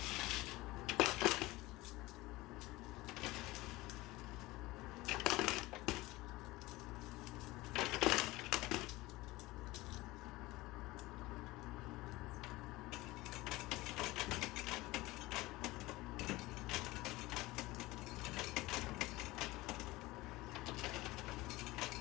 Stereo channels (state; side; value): quieter; right; 20.0 dB